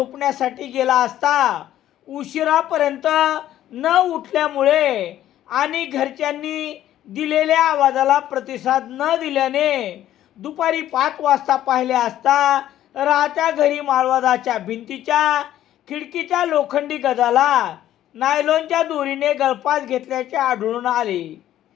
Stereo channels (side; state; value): right; quieter; 12.5 dB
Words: गेला असता उशिरापर्यंत न उठल्यामुळे आणि घरच्यांनी दिलेल्या आवाजाला प्रतिसाद न दिल्याने दुपारी 5 वाजता पाहिले असता राहत्या घरी माळवादाच्या भिंतीच्या खिडकीच्या लोखंडी गजाला नायलॉनच्या दोरीने गळफास घेतल्याचे आढळून आले.